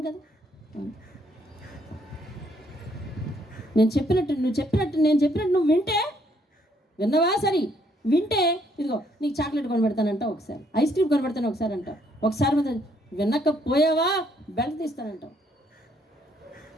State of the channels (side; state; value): both; normal; correlation 0.69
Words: కదా? నేను చెప్పినట్టు నువ్వు వింటే విన్నవా? సరే వింటే ఇదిగో నీకు చాక్లెట్ కొనబెడతానంట, ఒకసారి ఐస్ క్రీమ్ కొనబెడతాను ఒకసారి అంటావు, ఒకసారి వినకపోయావా బెల్ట్ తీస్తానంటావు.